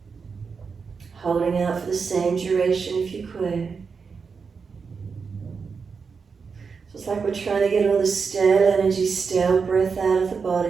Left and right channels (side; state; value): left; quieter; 5.4 dB